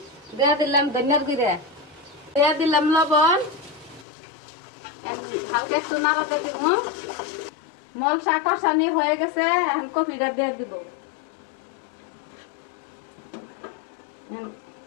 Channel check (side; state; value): right; drops out; at 4.0 s